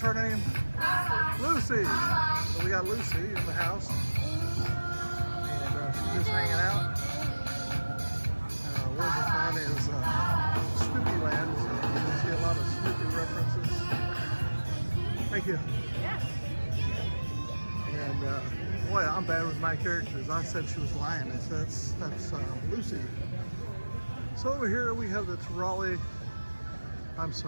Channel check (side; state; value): both; inverted; correlation -1.00